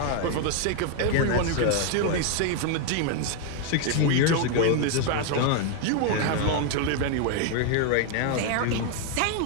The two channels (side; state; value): both; different; correlation 0.01